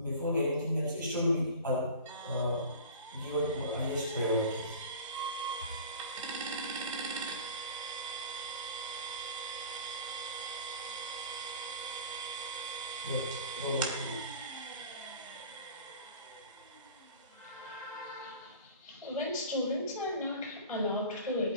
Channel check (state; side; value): inverted; both; correlation -0.40